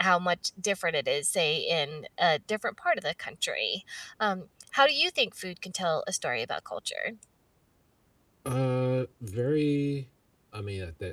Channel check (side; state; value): both; identical; correlation 1.00